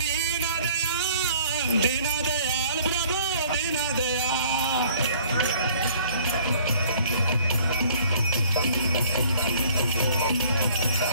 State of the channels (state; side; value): inverted; both; correlation -0.55